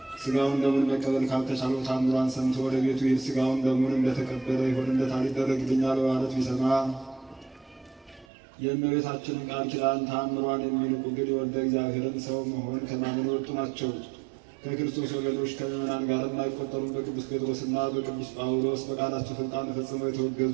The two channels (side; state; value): left; drops out; at 8.2 s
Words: ሥጋውን ደሙን መቀበል ካልተቻለው ታምሯን ሰምቶ ወደ ቤቱ ይሄድ። ሥጋውን ደሙን እንደተቀበለ ይሆንለታል ይደረግልኛል በማለት ቢሰማ የእመቤታችንን ቃል ኪዳን ታምሯን የሚንቁ ግን የወልደ እግዚአብሔርን ሰው መሆን ከማመን የወጡ ናቸው። ከክርስቶስ ወገኖች ከምዕመናን ጋር የማይቆጠሩም በቅዱስ ጴጥሮስና በቅዱስ ጳውሎስ በቃላቸው ሥልጣን ፈጽመው